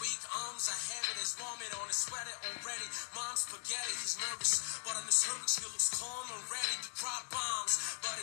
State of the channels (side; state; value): right; silent; digital silence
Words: arms are heavy. There's vomit on his sweater already. Mom's spaghetti, he's nervous, but on his cervix he looks calm and ready to drop bombs. But